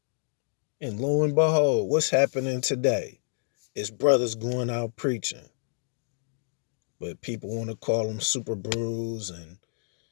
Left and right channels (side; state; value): right; silent; 59 dB below the other